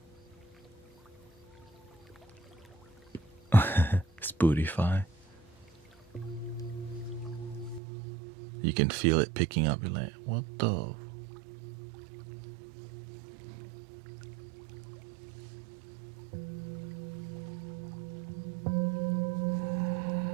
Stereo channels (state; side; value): drops out; left; at 7.8 s